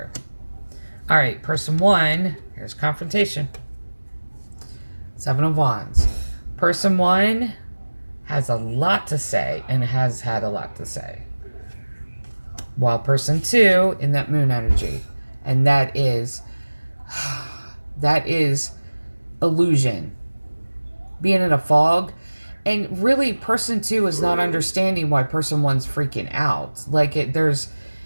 All right, person 1, here's confrontation. 7 of Wands. Person 1 has a lot to say and has had a lot to say. While person 2 in that moon energy. And that is illusion. Being in a fog. And really, person 2 is not understanding why person 1's freaking out. Like,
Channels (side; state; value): both; inverted; correlation -1.00